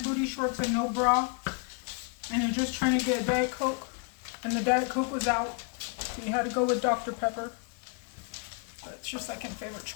shorts and no bra and you're just trying to get a Diet Coke and the Diet Coke was out. So you had to go with Dr. Pepper. But it's your second favorite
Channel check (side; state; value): right; quieter; 37.3 dB